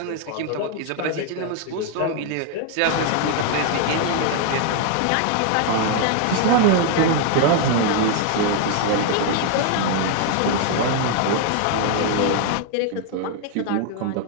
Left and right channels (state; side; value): different; both; correlation 0.00